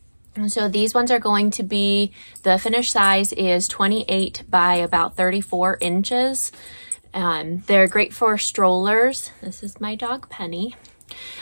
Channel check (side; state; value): both; inverted; correlation -1.00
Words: And so these ones are going to be, the finished size is 28 by about 34 inches. They're great for strollers. This is my dog Penny.